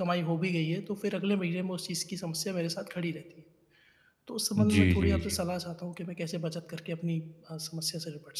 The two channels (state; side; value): identical; both; correlation 1.00